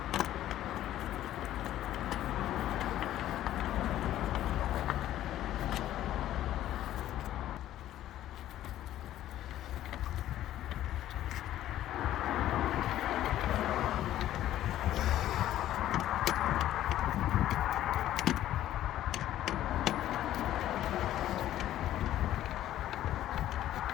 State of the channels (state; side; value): quieter; right; 12.9 dB